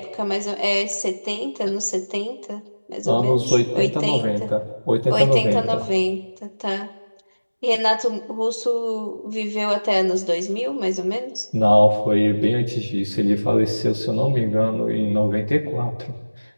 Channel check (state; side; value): inverted; both; correlation -1.00